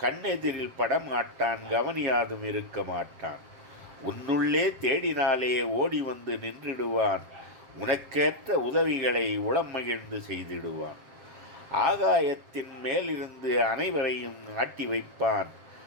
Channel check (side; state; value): left; late; 7.6 ms